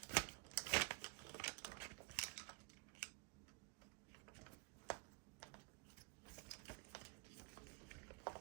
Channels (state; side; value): quieter; left; 30.8 dB